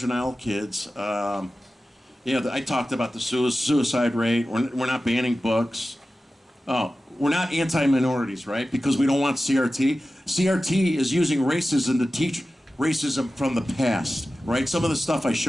kids. I talked about the suicide rate. We're not banning books. Oh, we're not anti-minorities, right? Because we don't want CRT. CRT is using racism to teach racism from the past, right? Some of the stuff I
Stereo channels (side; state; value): both; normal; correlation 0.95